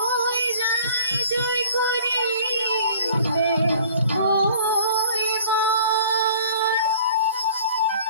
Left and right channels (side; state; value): both; inverted; correlation -0.51